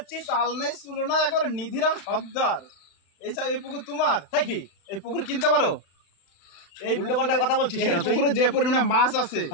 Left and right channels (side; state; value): right; late; 35 ms